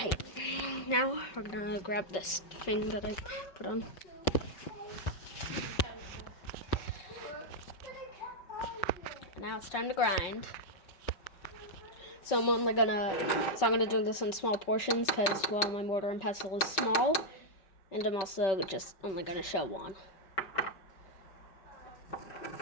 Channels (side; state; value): right; late; 5.3 ms